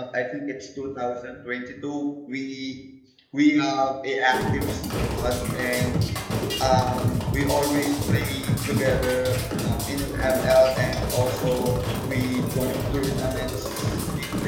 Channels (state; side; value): identical; both; correlation 1.00